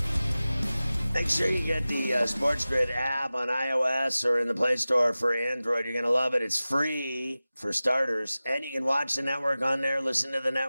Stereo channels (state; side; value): inverted; both; correlation -0.97